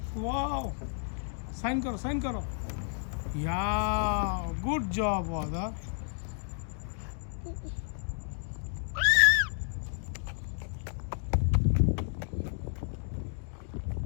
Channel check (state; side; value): silent; right; 57 dB below the other